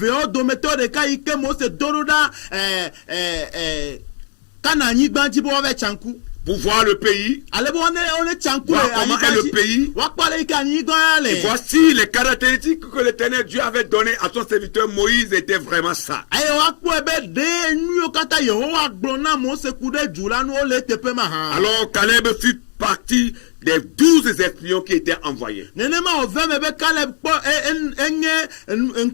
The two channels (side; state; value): right; silent; 58 dB below the other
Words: Pour voir le pays, voir comment est le pays, et voici les caractéristiques que l'Éternel Dieu avait données à son serviteur Moïse étaient vraiment ça. Alors Caleb fut partie des 12 espions qui étaient envoyés. Mais